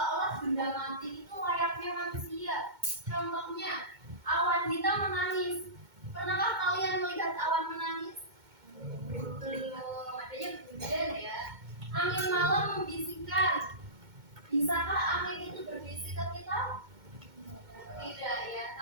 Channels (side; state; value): left; late; 2.2 ms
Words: benda mati itu layaknya manusia. Contohnya, awan hitam menangis. Pernahkah kalian melihat awan menangis? Belum. Adanya hujan ya. Angin malam membisikkan. Bisakah angin itu berbisik ke kita? Tidak ya,